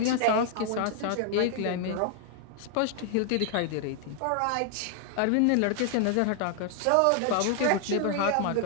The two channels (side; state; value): both; different; correlation 0.00